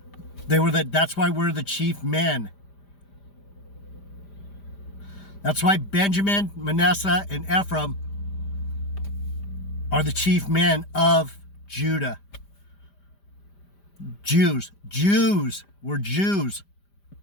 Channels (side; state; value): right; late; 5.0 ms